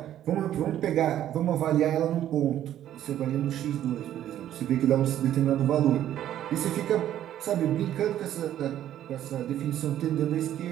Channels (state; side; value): quieter; left; 11.7 dB